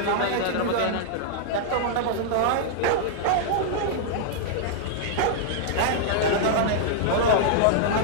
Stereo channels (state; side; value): different; both; correlation -0.01